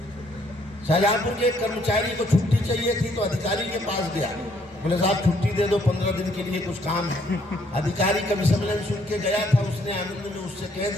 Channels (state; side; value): normal; both; correlation 0.67